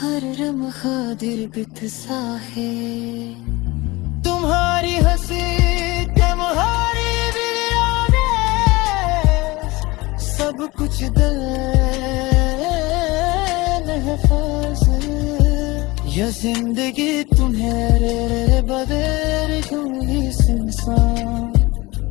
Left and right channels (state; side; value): quieter; right; 22.0 dB